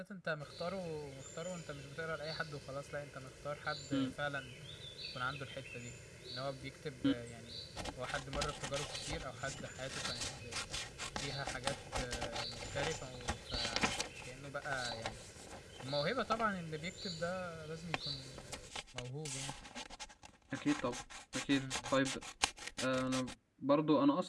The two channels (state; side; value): identical; both; correlation 1.00